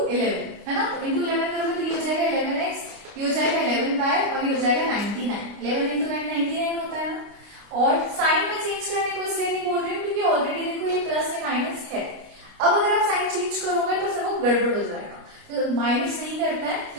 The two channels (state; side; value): late; left; 29 ms